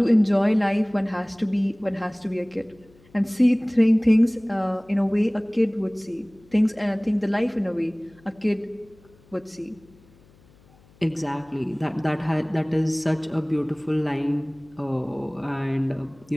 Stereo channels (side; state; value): left; noise; hum, 28 dB below the sound